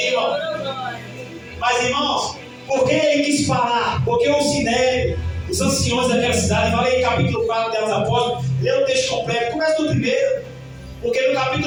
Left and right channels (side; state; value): both; identical; correlation 1.00